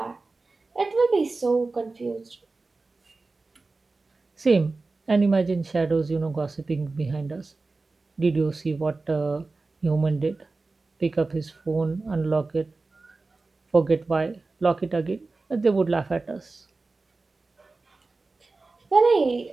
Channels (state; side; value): quieter; left; 3.6 dB